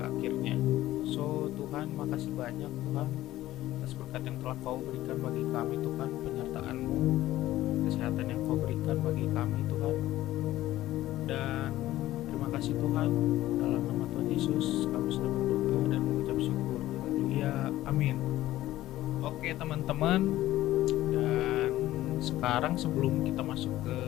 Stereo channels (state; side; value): quieter; right; 15.2 dB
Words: akhirnya. So Tuhan, makasih banyak Tuhan atas berkat yang telah Kau berikan bagi kami Tuhan, penyertaan-Mu, kesehatan yang Kau berikan bagi kami Tuhan. Dan terima kasih Tuhan, dalam nama Tuhan Yesus kami sudah berdoa dan mengucap syukur. Haleluya, amin. Oke teman-teman, dan sekarang sebelum kita masuk ke